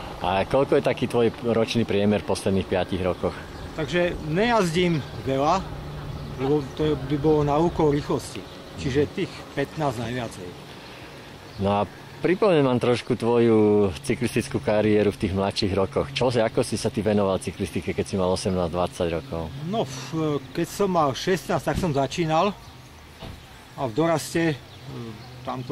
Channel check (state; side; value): identical; both; correlation 1.00